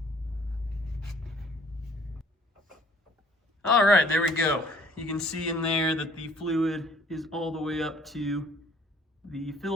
All right, there we go. You can see in there that the fluid is all the way up to the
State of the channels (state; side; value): normal; both; correlation 0.57